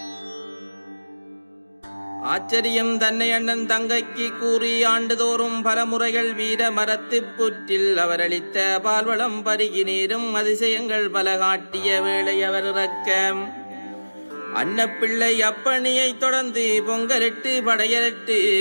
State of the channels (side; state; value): both; inverted; correlation -1.00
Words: ஆச்சரியம் தன்னை அண்ணன் தங்கைக்கு கூறி ஆண்டுதோறும் பல முறைகள் வீர மரத்து புற்றில் அவர் அளித்த பால்வளம் பருகி நீரும் அதிசயங்கள் பல காட்டிய வேளை அவர் இறக்க அன்னப்பிள்ளை அப்பணியை தொடர்ந்து பொங்கலிட்டு படையலிட்டு